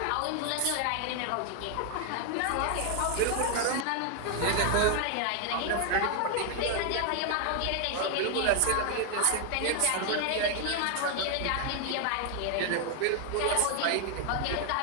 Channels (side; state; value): both; different; correlation 0.00